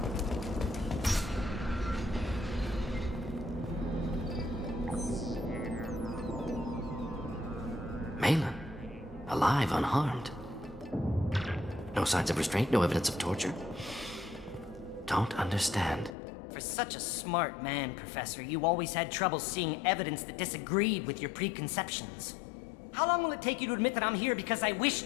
Malin. Alive, unharmed. No signs of restraint, no evidence of torture. Don't understand. For such a smart man, Professor, you always had trouble seeing evidence that disagreed with your preconceptions. How long will it take you to admit that I'm here because I wish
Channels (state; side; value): drops out; right; at 16.2 s